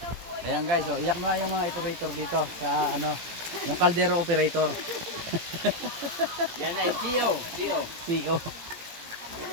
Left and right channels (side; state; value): left; late; 17 ms